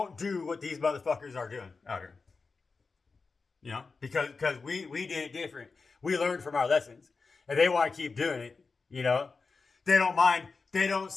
do what these motherfuckers are doing out here. You know, because we did it different. We learned from our lessons, and they want to keep doing it. You know, they don't mind. They don't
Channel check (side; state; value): right; quieter; 4.4 dB